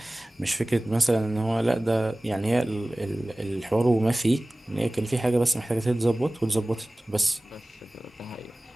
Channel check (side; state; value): both; normal; correlation 0.98